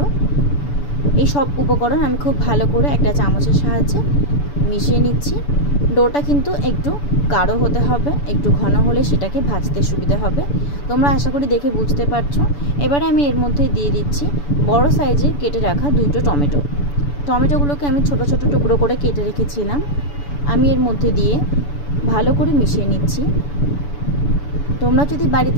এই সব উপকরণ আমি খুব ভালো করে একটা চামচের সাহায্যে মিশিয়ে নিচ্ছি। ডোটা কিন্তু একটু গাঢ় হতে হবে, একটু ঘন হলে সেটাকে ভাজতে সুবিধা হবে। তোমরা আশা করি দেখে বুঝতে পারছো। এবারে আমি এর মধ্যে দিয়ে দিচ্ছি বড় সাইজে কেটে রাখা 2টো টমেটো। টমেটোগুলোকে আমি ছোট ছোট টুকরো করে কেটে রেখেছিলাম। আমি এর মধ্যে দিয়ে ভালো করে মিশিয়ে নিচ্ছি। তোমরা যদি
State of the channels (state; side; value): late; right; 7.0 ms